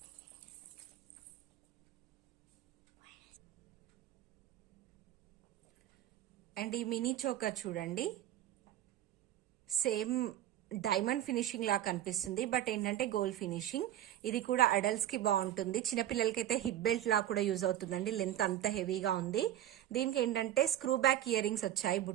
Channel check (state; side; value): quieter; left; 12.3 dB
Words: అండ్ ఈ మినీ చోకర్ చూడండి, సేమ్ డైమండ్ ఫినిషింగ్ లా కనిపిస్తుంది, బట్ ఏంటంటే గోల్డ్ ఫినిషింగ్. ఇది కూడా అడల్ట్స్ కి బాగుంటుంది. చిన్నపిల్లలకైతే హిప్ బెల్ట్ లా కూడా యూజ్ అవుతుందండి. లెంత్ అంత హెవీగా ఉంది. దీనికి ఏంటంటే స్క్రూ బ్యాక్ ఇయర్ రింగ్స్ వచ్చాయి